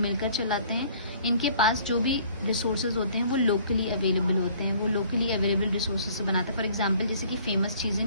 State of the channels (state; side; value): inverted; both; correlation -0.56